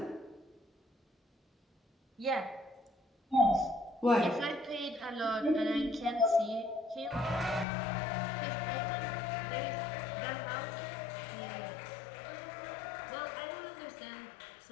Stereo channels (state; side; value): drops out; right; at 7.7 s